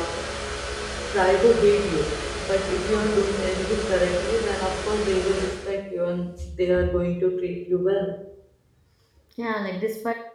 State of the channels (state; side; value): identical; both; correlation 1.00